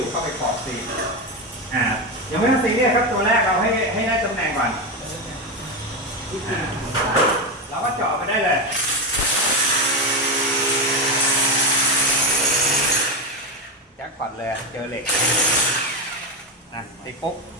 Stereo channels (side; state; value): both; normal; correlation 0.13